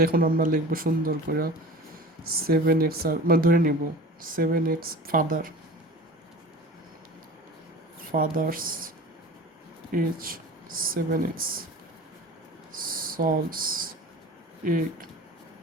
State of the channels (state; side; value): normal; both; correlation 0.38